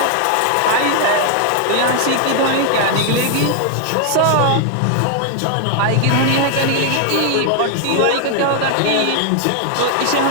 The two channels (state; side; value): different; both; correlation 0.00